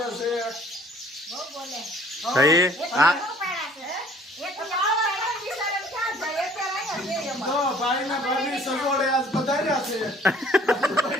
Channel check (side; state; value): both; normal; correlation 0.55